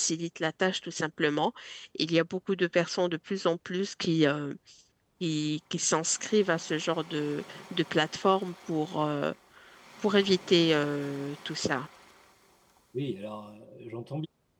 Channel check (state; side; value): identical; both; correlation 1.00